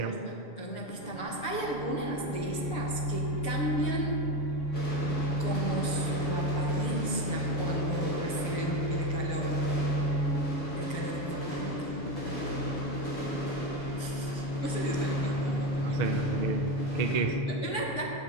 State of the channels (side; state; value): right; late; 6.9 ms